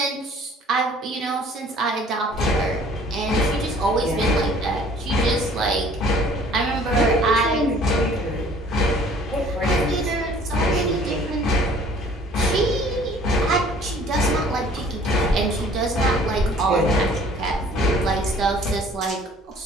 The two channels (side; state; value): both; normal; correlation 0.53